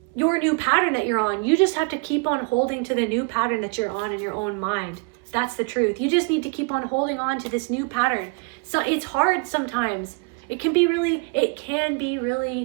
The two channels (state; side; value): quieter; left; 31.4 dB